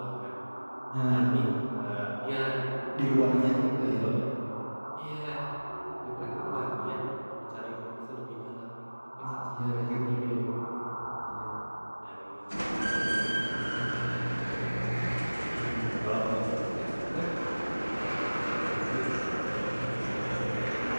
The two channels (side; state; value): both; inverted; correlation -1.00